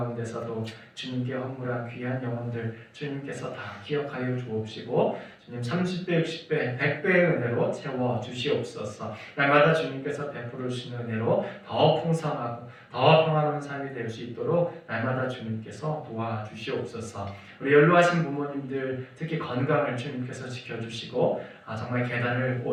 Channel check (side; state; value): both; identical; correlation 1.00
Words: 주님께 헌물한 귀한 영혼들 주님께서 다 기억하여 주옵시고 주님 30배, 60배, 100배의 은혜로 채워 주시옵소서. 날마다 주님께서 베풀어 주시는 은혜로 더 풍성하고 더 평화로운 삶이 될 수 있도록 날마다 주님께서 도와주시옵소서. 우리 연로하신 부모님들 특히 건강을 주님께서 지켜주시고 정말 계단을